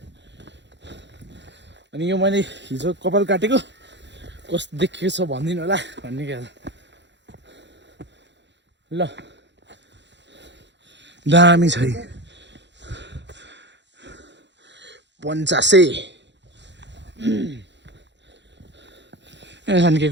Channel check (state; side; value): late; left; 0.52 ms